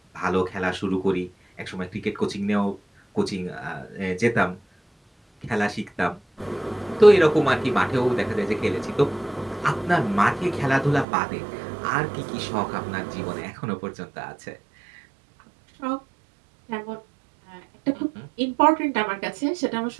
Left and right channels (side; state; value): left; drops out; at 11.1 s